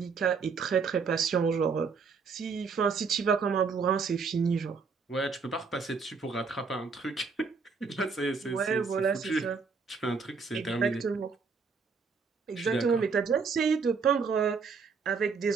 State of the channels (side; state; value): left; quieter; 5.2 dB